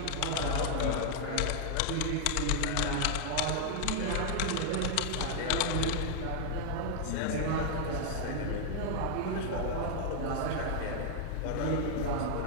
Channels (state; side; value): different; both; correlation 0.00